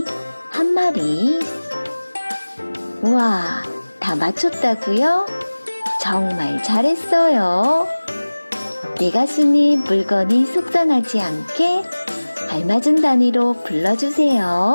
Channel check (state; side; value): inverted; both; correlation -1.00